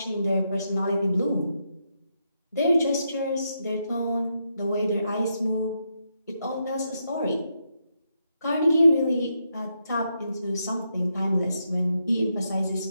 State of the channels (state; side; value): inverted; both; correlation -0.82